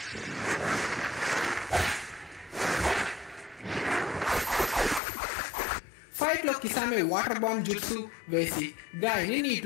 ఫైట్ లో కిసామె వాటర్ బాంబ్ జుట్సు వేసి గాయని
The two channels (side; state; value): right; drops out; at 5.0 s